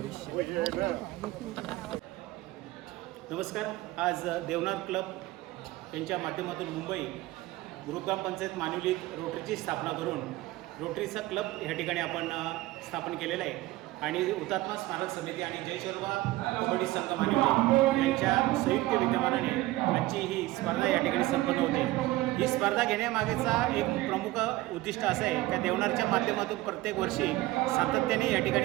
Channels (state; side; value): quieter; left; 18.1 dB